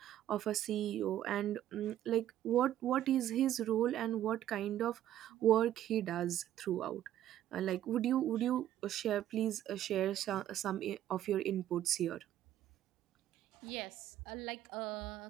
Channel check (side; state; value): left; quieter; 12.1 dB